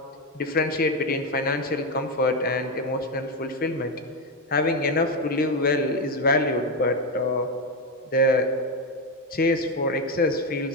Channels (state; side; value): normal; both; correlation 0.09